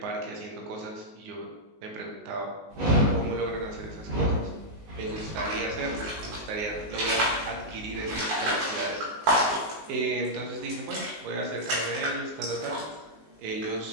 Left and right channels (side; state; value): left; late; 19 ms